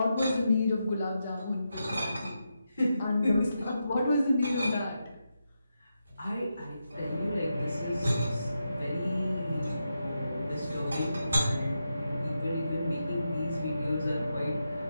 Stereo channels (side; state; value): both; inverted; correlation -0.87